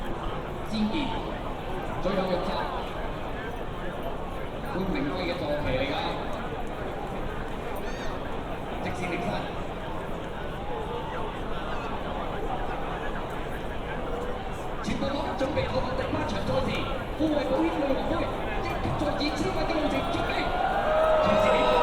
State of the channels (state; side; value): identical; both; correlation 1.00